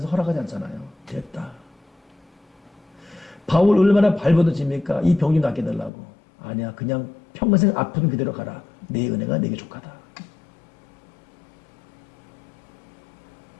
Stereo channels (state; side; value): drops out; right; at 5.9 s